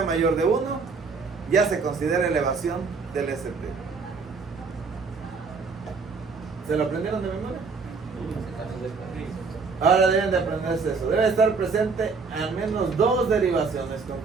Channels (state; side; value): quieter; left; 4.7 dB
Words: mayor de 1, ya se considera elevación del ST. ¿Se lo aprendieron de memoria? Ahora deben de aprenderse eso. Debe estar presente al menos 2 derivaciones